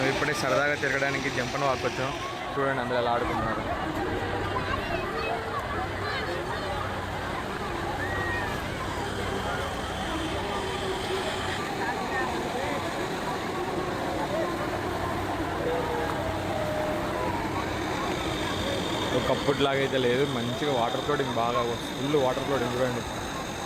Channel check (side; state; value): both; identical; correlation 1.00